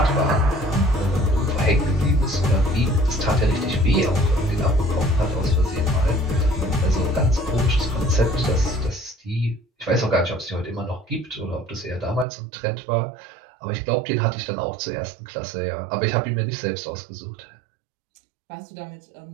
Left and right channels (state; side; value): drops out; left; at 12.2 s